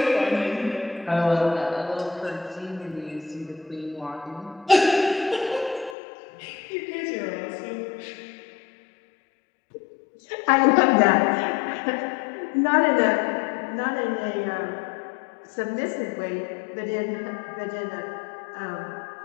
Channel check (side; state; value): right; drops out; at 6.0 s